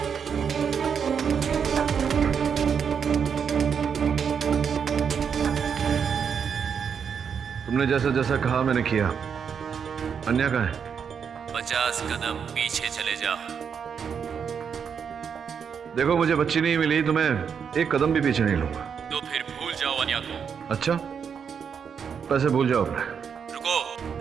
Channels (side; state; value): left; quieter; 7.0 dB